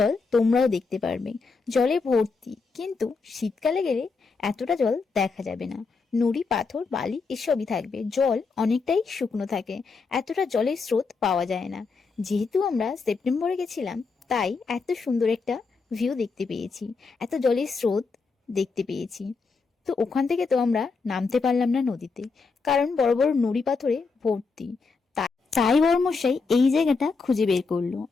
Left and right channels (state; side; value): quieter; right; 4.6 dB